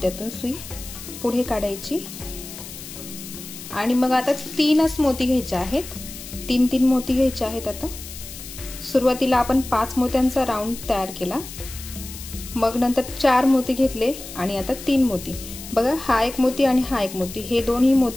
सुई पुढे काढायची आणि मग आता 3च मोती घ्यायचे आहेत। 3 मोती घ्यायचे आहेत। आता सुरुवातीला आपण 5 मोत्यांचा राऊंड तयार केला, मग नंतर 4 मोती घेतले आणि आता 3 मोती। बघा, हा 1 मोती आणि हा 1 मोती, हे दोन्ही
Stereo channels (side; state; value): left; noise; hiss, 13 dB below the sound